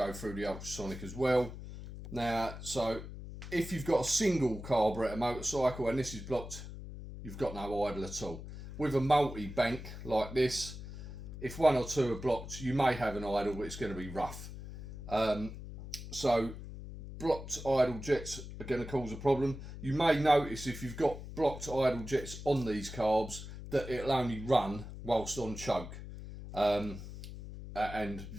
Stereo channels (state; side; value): noise; left; hum, 11 dB below the sound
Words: through the ultrasonic as well. Now, so if you've got a single carburettor motorcycle and this is blocked, you've got no idle at all. With a multi-bank like this, if one or two are blocked, you may have an idle, but it's going to be rough. So blocked idle jets are going to cause a problem. You may notice if you've got blocked idle jets on these carbs that it'll only run whilst on choke. And